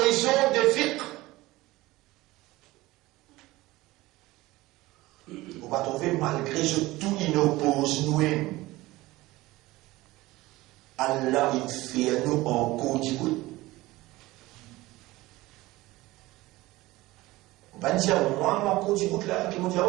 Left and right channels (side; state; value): left; quieter; 18.9 dB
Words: de fiqh. On va trouver malgré ce tout inoppose nous-mêmes. Allah il fait nous en code. On va dire, moi, mon code là, qui me dit,